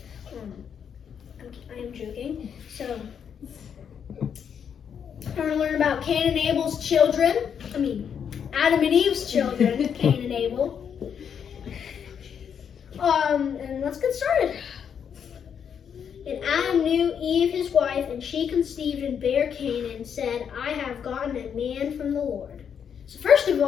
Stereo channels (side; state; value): right; quieter; 7.7 dB